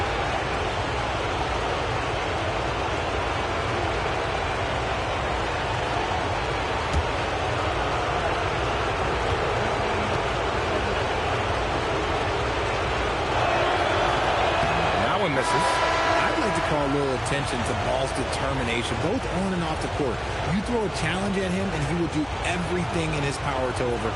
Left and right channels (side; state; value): both; identical; correlation 1.00